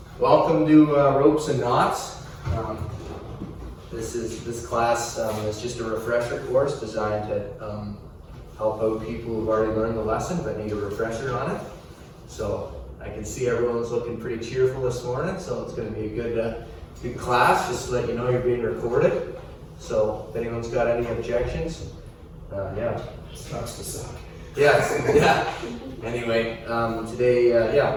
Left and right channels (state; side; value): identical; both; correlation 1.00